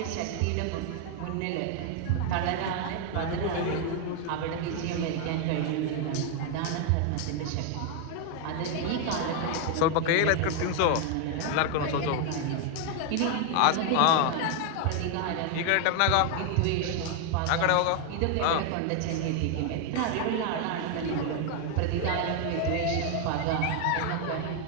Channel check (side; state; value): both; different; correlation 0.00